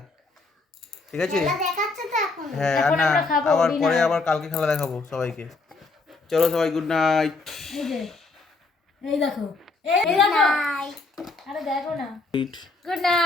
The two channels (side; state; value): right; quieter; 3.7 dB